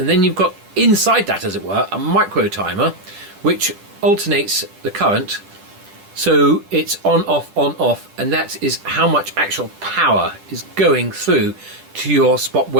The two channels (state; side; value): late; left; 10 ms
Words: then you've got inside that, as it were, a micro timer which alternates the current, so it's on off, and that is how much actual power is going through to your spot